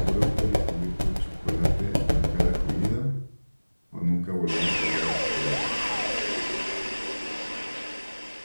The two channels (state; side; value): inverted; both; correlation -1.00